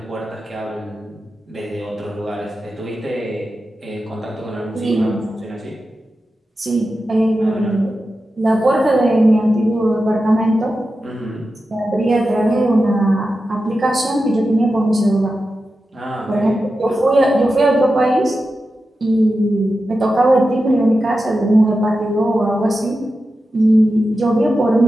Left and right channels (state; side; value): normal; both; correlation 0.91